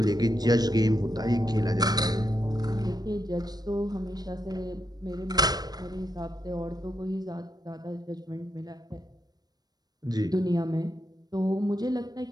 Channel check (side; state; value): left; late; 0.19 ms